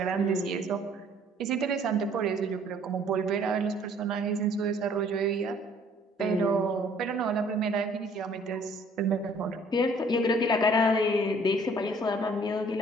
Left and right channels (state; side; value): normal; both; correlation 0.58